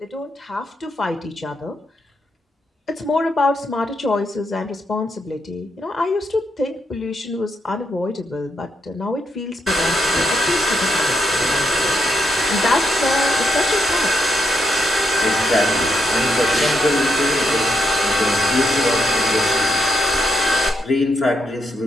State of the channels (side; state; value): both; normal; correlation 0.80